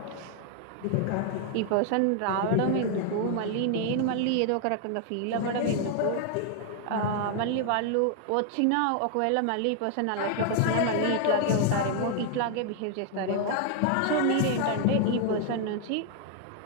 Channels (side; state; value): both; different; correlation 0.00